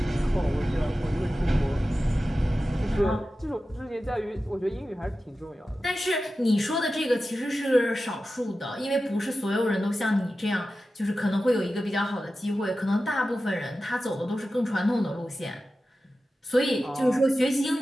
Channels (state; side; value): normal; both; correlation 0.93